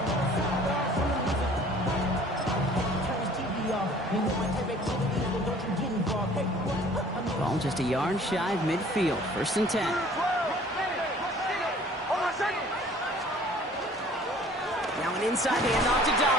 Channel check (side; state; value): both; normal; correlation 0.52